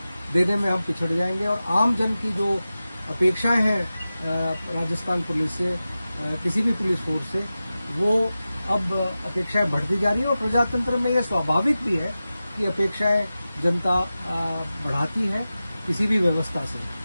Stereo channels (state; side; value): inverted; both; correlation -0.95